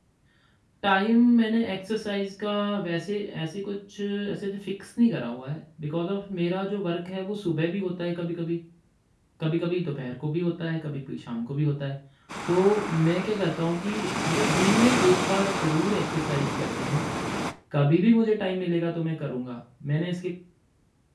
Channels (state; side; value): identical; both; correlation 1.00